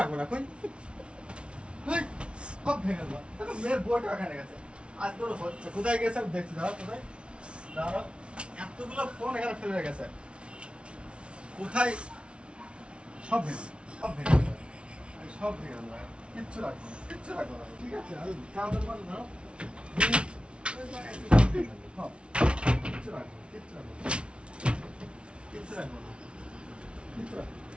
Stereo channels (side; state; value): left; late; 0.058 ms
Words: না। কই সব ভেঙে ফেলবো। দেখো মেয়ের বউটা এখানে গেছে, আজ তোর হচ্ছে। কোথায় গেছে আমি দেখছি, দাঁড়াও কোথায়, দাঁড়াও। এতগুলো ফোন এখানে ফেলে রেখেছে, কোথায়? সব ভেঙে, সব ভেঙে ফেলবো, সব ভেঙে ফেলবো, কিচ্ছু রাখবো না, কিচ্ছু রাখবো না। ঠিক আছে, আমি চাদর বাঁধ দাও। কিচ্ছু রাখবো, কিচ্ছু রাখবো, কিচ্ছু রাখবো না, কিচ্ছু রাখবো,